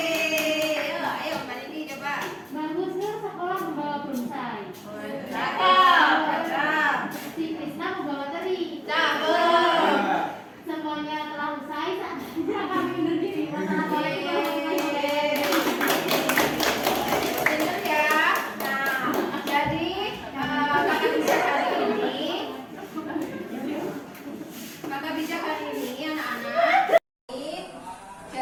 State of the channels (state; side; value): identical; both; correlation 1.00